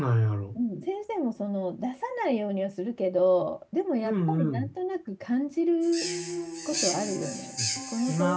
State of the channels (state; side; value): identical; both; correlation 1.00